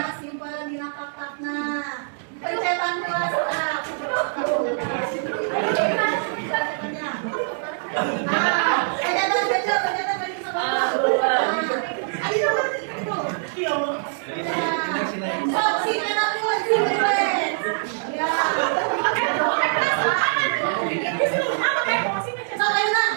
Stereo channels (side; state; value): left; silent; digital silence